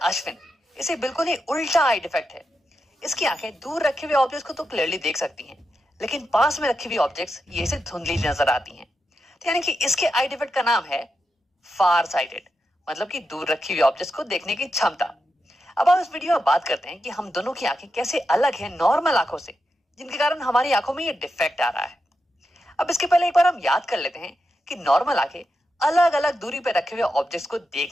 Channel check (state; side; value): normal; both; correlation 0.88